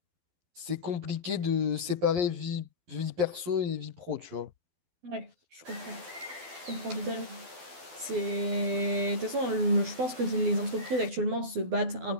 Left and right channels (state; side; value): late; left; 12 ms